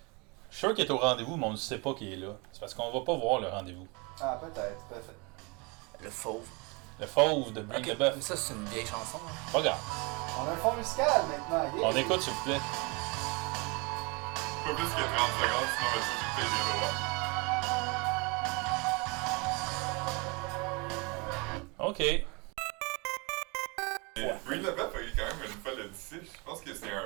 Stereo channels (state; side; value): quieter; left; 29.2 dB